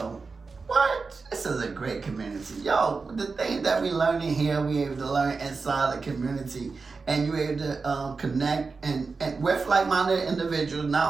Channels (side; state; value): left; quieter; 4.4 dB